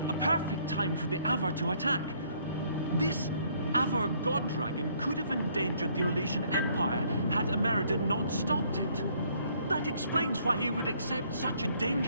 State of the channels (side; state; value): both; inverted; correlation -0.64